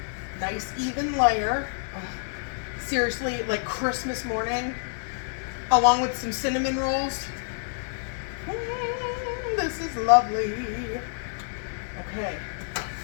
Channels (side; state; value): right; silent; 56 dB below the other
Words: Nice even layer. Seriously, Christmas morning, along with some cinnamon rolls. This is lovely. Okay.